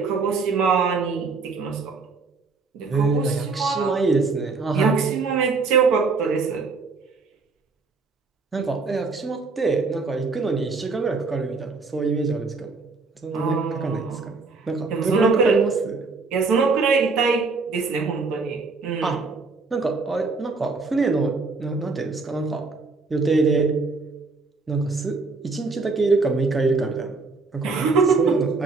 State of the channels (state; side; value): quieter; left; 4.1 dB